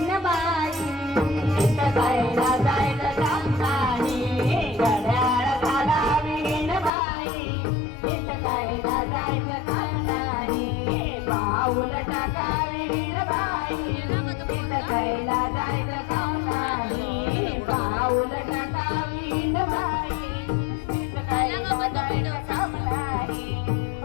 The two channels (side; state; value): right; drops out; at 6.9 s